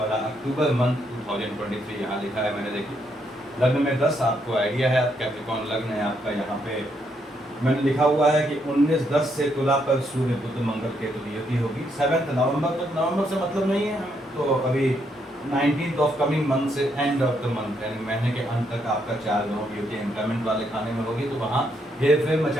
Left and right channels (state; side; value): normal; both; correlation 0.76